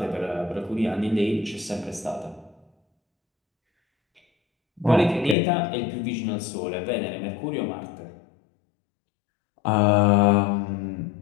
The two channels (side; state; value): right; drops out; at 5.4 s